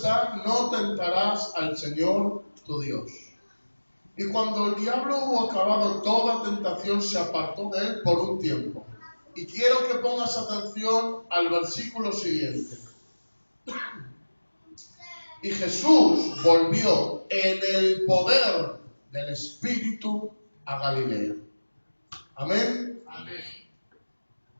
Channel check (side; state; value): both; inverted; correlation -1.00